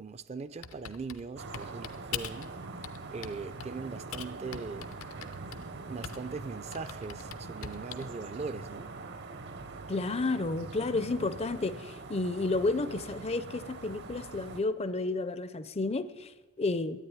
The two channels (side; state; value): both; normal; correlation 0.48